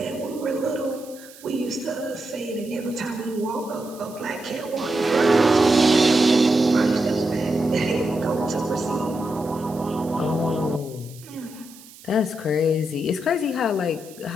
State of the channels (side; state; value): right; noise; hiss, 21 dB below the sound